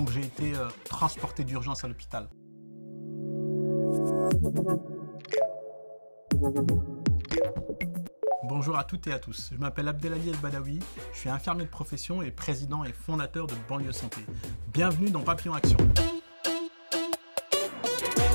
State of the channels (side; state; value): both; inverted; correlation -1.00